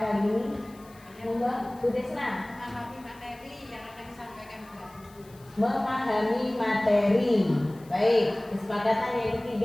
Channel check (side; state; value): left; noise; hiss, 26 dB below the sound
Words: ini. Monggo, Bu Desna. Memahami materi yang akan disampaikan Mbak. Memahami materi. Baik, kesepakatan yang